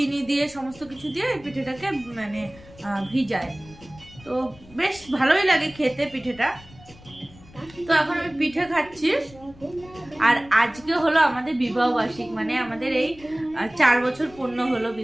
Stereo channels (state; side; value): noise; left; rumble, 22 dB below the sound